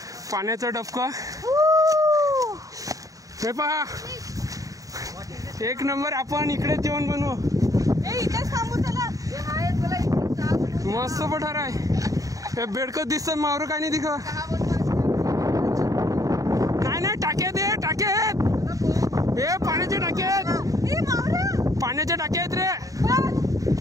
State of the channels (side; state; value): left; late; 0.16 ms